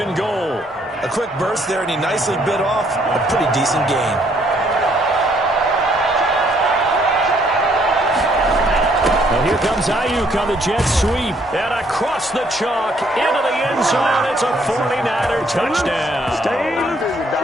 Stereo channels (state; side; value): normal; both; correlation 0.67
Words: and goal. A quick burst there, and he nicely bit off a pretty decent gain. And here comes Ayuk on the jet sweep. And across the chalk into the end zone. It's a 49er touchdown.